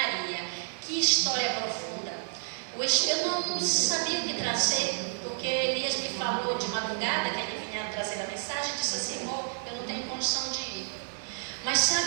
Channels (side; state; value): left; silent; digital silence